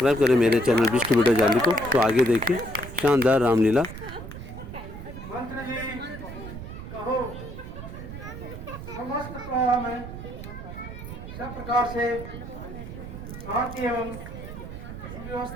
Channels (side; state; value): right; noise; rumble, 10 dB below the sound